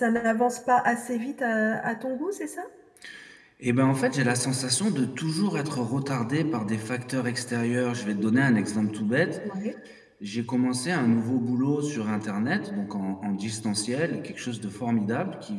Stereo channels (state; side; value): identical; both; correlation 1.00